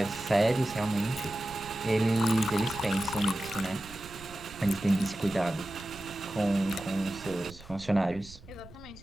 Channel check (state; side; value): noise; right; rumble, 19 dB below the sound